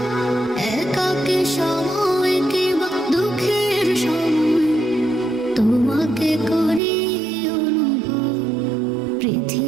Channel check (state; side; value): drops out; left; at 6.8 s